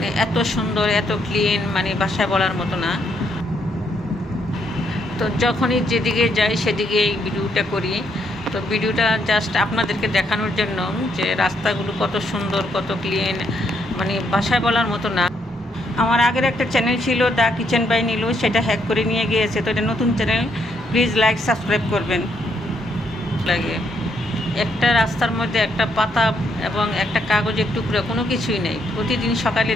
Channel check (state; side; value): normal; both; correlation 0.74